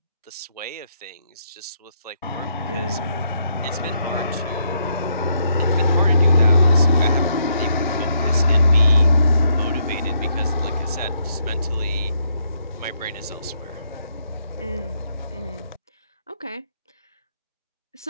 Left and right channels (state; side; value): inverted; both; correlation -0.75